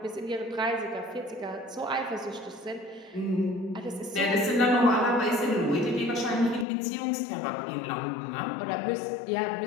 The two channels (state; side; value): drops out; right; at 6.7 s